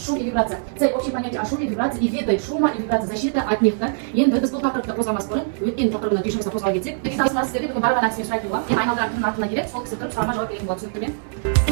шум и вибрация. Цель общее понятие о шуме, вибрации и виды шума и вибрации, защита от них. Енді біз бұл тақырыпты қозғамас бұрын өткен тақырыбына кешімізді қозғала кетсек, сіздерге бүгін барған әдіспен сұрайтын боламын. Мен айналдырған кімнің артына келеді, сол кісі тұрып сұрағыма жауап беретін болады. Түсінікті ме?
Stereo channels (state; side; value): silent; left; digital silence